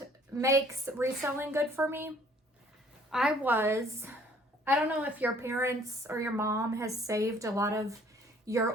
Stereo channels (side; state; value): both; normal; correlation 0.58